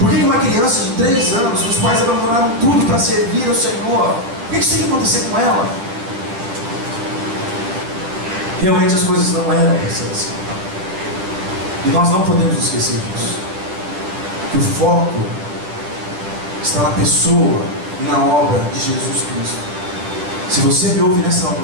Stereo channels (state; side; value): late; left; 10 ms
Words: que uma criança de 3 anos, os pais abandonaram tudo para servir ao Senhor? Por que isso tem que acontecer com ela? Realmente as coisas não eram para ser assim. E nós não podemos esquecer disso. Que o foco está na pessoa e na obra de Jesus Cristo. Se você me ouve nessa